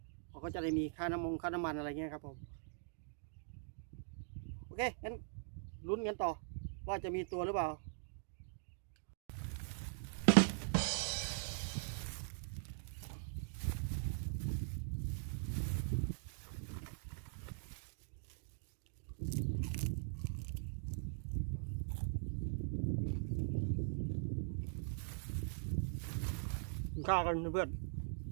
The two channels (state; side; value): silent; left; digital silence